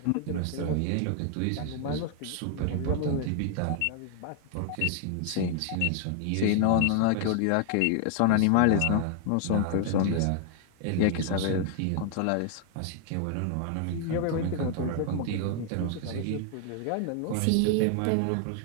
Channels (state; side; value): different; both; correlation 0.00